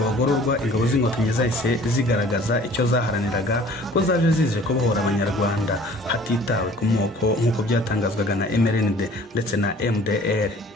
bagororwa, ingabo z'inkotanyi zahise zigaragaza icyo zaharaniraga ko zaje zije kubohora abanyarwanda hatitawe ku moko nk'uko byatangazwaga na MRND ndetse na MDR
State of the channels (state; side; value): normal; both; correlation 0.50